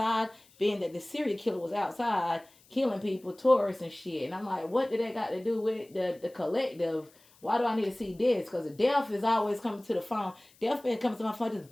being that the serial killer was outside killing people, tourists and shit. And I'm like, what did that got to do with the collective? Why do I need to see this? Because the death is always coming to the phone. Death been coming to my phone, just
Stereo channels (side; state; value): left; noise; hiss, 29 dB below the sound